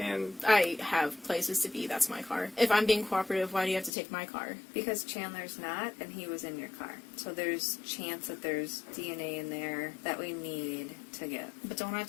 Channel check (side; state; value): right; drops out; at 3.9 s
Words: I have places to be. That's my car. If I'm being cooperative, why do you have to take my car? Because Chandler's not, and he was in your car. So there's chance that there's DNA in there that we need to get. But don't I